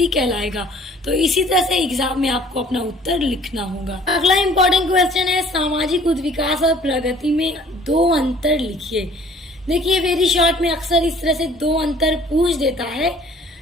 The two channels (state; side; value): normal; both; correlation 0.54